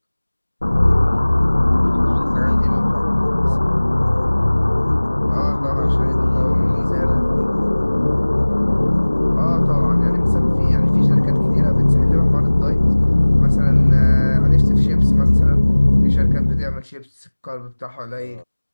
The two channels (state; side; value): inverted; both; correlation -1.00